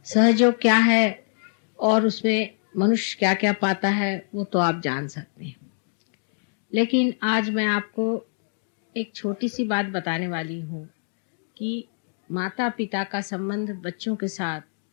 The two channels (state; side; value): silent; right; digital silence